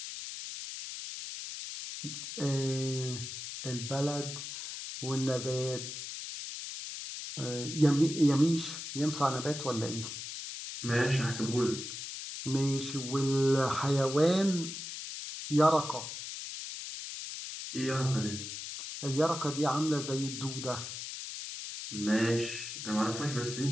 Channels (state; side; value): noise; left; hiss, 8 dB below the sound